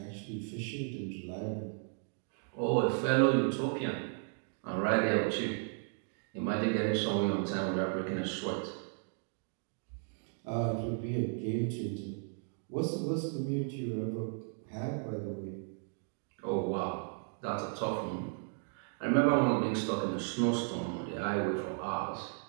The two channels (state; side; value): silent; left; 55 dB below the other